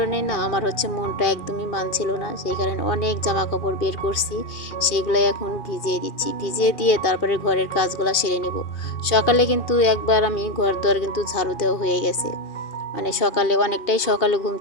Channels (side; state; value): right; late; 2.4 ms